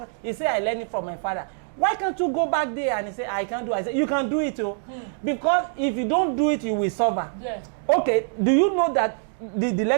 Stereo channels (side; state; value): left; silent; digital silence